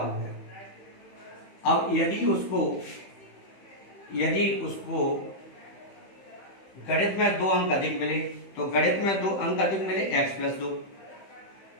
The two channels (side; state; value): right; late; 15 ms